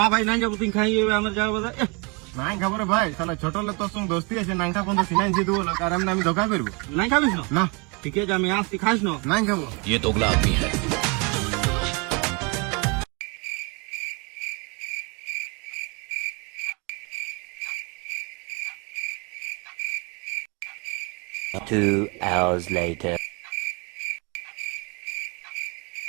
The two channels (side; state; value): left; quieter; 30.8 dB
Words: ভাই নাই যাবো, তুই খাই আমার যাবো। নাই খাবার ভাই, শালা ছোট হলে তোর সঙ্গে দোস্তি আছে, নাংটা পর্যন্ত সিনাই দিয়ে দেবো, আর আমি ধোকা করবো। নাই খাবিস না? না ঠিক আছে আমি আসছি, খাস না? নাই খাবো। ये दोगला आदमी है। Two hours later.